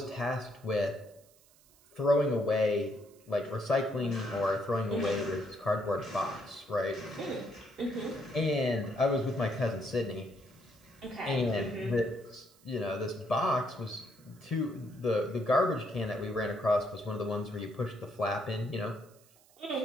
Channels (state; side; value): noise; right; hiss, 28 dB below the sound